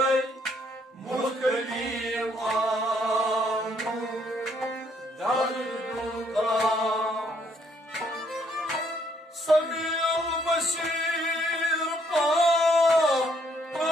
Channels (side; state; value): both; normal; correlation 0.68